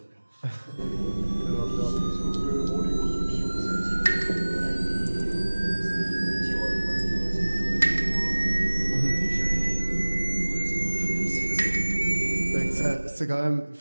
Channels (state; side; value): inverted; both; correlation -1.00